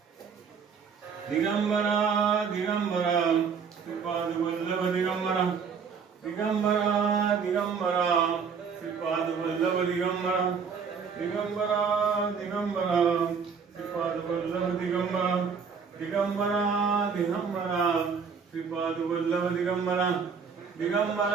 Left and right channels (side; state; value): left; quieter; 6.1 dB